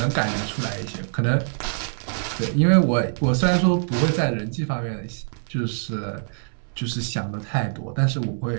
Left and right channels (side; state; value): left; silent; 63 dB below the other